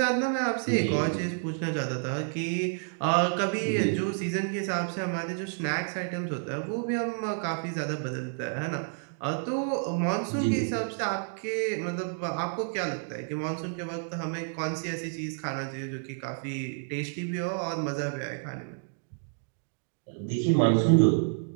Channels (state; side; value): silent; left; 58 dB below the other